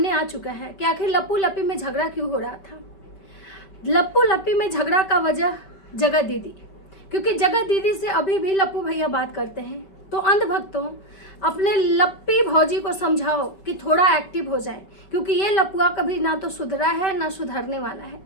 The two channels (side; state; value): right; late; 5.1 ms